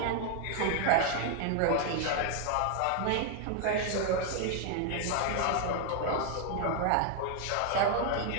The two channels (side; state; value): both; different; correlation 0.00